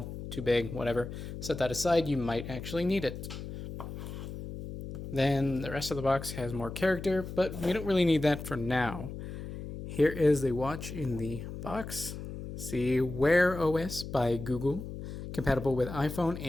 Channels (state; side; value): noise; left; hum, 9 dB below the sound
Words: too big, whatever. Set that aside, you might actually need it. Then the rest of the box has more character, but we don't really need that for now. Here is the watch in the box. See, Wear OS by Google, compatible with iPhone